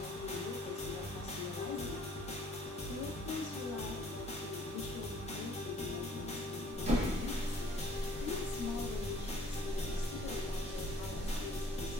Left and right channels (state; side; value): normal; both; correlation 0.58